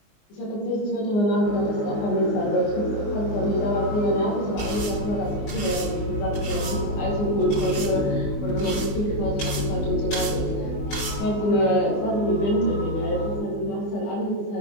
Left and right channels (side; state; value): right; late; 19 ms